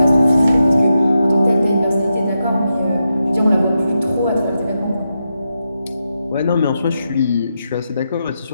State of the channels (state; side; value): inverted; both; correlation -0.87